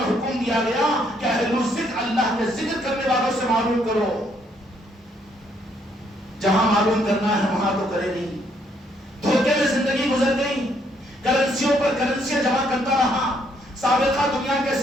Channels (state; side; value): normal; both; correlation 0.70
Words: حکم دیا گیا کہ اہل الذکر اللہ کے ذکر کرنے والوں سے معلوم کرو. جہاں معلوم کرنا ہے وہاں تو کرے نہیں. دھوکے میں زندگی گزر گئی، کرنسیوں پر کرنسیاں جمع کرتا رہا. سابقہ دنیا کے